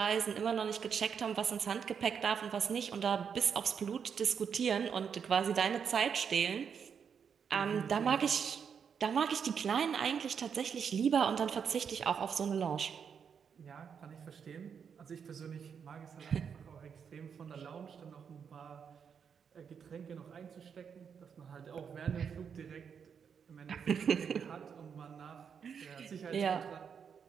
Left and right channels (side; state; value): left; quieter; 7.0 dB